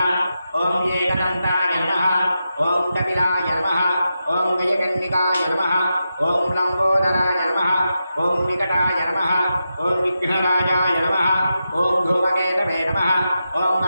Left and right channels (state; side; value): inverted; both; correlation -0.88